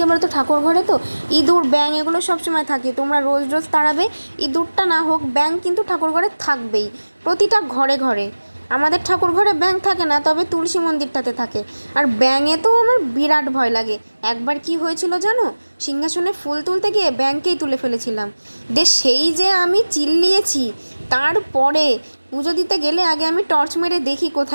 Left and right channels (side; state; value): both; inverted; correlation -1.00